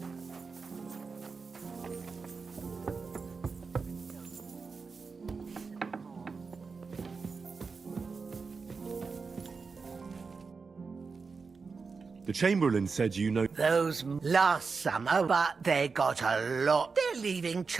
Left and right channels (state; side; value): quieter; left; 4.8 dB